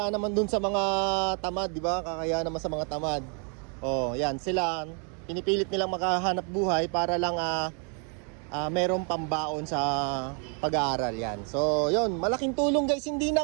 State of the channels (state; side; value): quieter; left; 39.1 dB